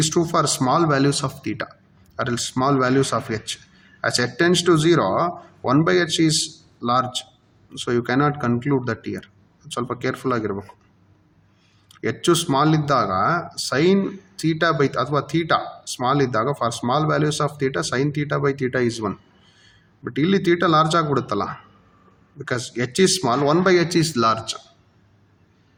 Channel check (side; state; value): both; identical; correlation 1.00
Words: true for small values of theta or else small values of h. As h tends to 0, 1 by h is large. So you cannot conclude that here. ಸ್ವಲ್ಪ careful ಆಗಿರಬೇಕು. ಹೆಚ್ಚು small ಇದ್ದಾಗ sine theta by ಅಥವಾ theta small ಇದ್ದಾಗ, for small values of theta sine theta by theta is 1. But ಇಲ್ಲಿ theta large ಆಗಿಬಿಡುತ್ತಲ್ಲ, because h is small, 1 by h is large.